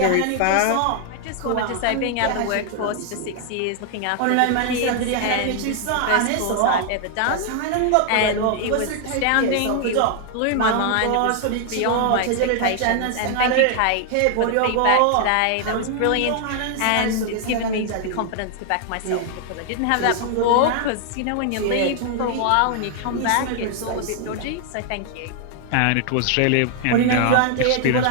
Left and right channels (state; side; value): different; both; correlation 0.00